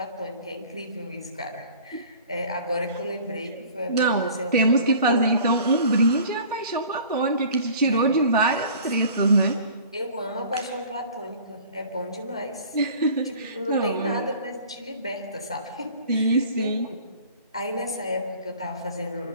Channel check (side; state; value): both; inverted; correlation -0.46